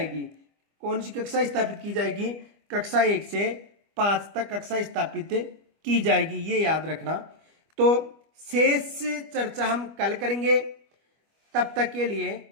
कौन सी कक्षा स्थापित की जाएगी? कक्षा 1 से 5 तक कक्षा स्थापित की जाएगी, ये याद रखना। तो शेष चर्चा हम कल करेंगे। तब तक के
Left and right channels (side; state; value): left; late; 25 ms